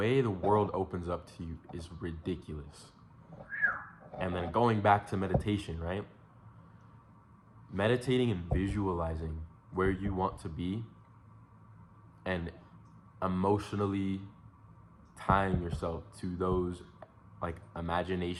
the world opens up to you is ridiculous. And then going back to meditation, right? Meditating and visualizing where you want to be and emotionally tying yourself to those like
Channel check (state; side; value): identical; both; correlation 1.00